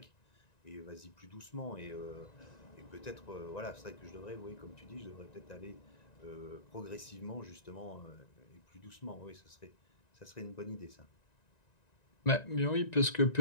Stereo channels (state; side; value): late; right; 1.9 ms